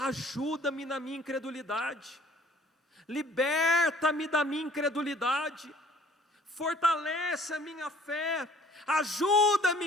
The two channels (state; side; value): normal; both; correlation 0.55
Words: na minha incredulidade, liberta-me da minha incredulidade, fortalece a minha fé,